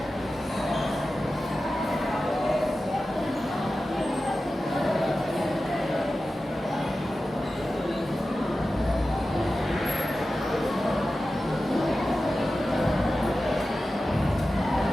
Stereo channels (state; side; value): normal; both; correlation 0.94